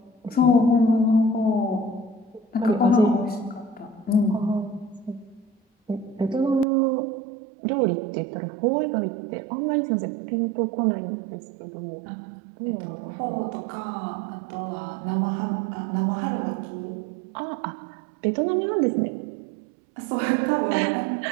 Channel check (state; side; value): drops out; left; at 6.7 s